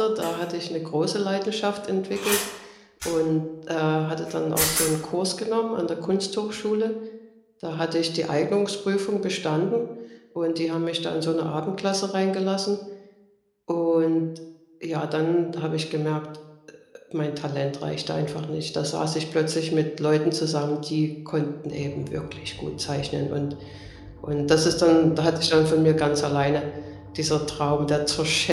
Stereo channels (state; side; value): identical; both; correlation 1.00